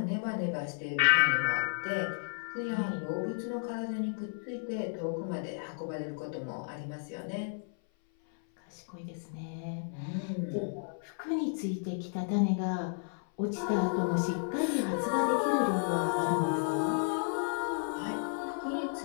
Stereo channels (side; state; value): right; silent; 56 dB below the other